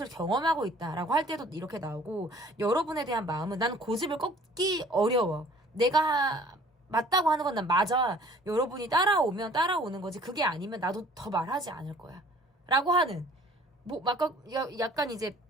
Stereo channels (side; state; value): both; normal; correlation 0.53